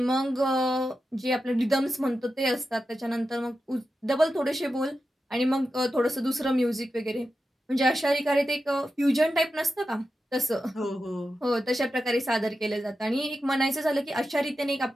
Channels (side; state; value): both; normal; correlation 0.90